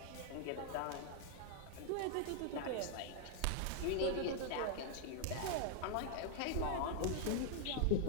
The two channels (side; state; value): both; different; correlation 0.00